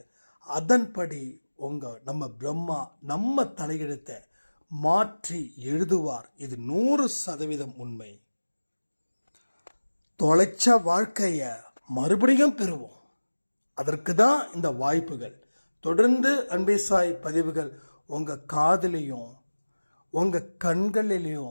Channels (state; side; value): inverted; both; correlation -1.00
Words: அதன்படி நம்ம பிரம்மா நம்ம தலையெழுத்தை மாற்றி எழுதுவார். இது 100% உண்மை. தொலைச்ச வாழ்க்கையை மறுபடியும் பெறுவோம். அதற்கு தான் இந்த வாய்ப்புகள். தொடர்ந்து அன்பே சாய் பதிவுகள் உங்கள் காதிலையும் உங்கள்